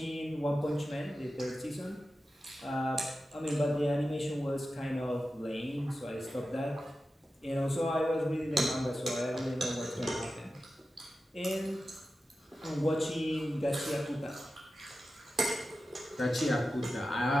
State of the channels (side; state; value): both; normal; correlation 0.93